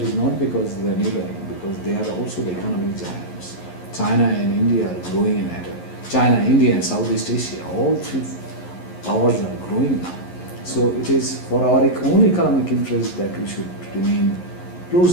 not because they are neighboring, because they are also the economic giants. China and India are growing at it. China, India, and Southeast Asia, all three powers are growing now. So it is for our own economic interest that we should remain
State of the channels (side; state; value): right; late; 11 ms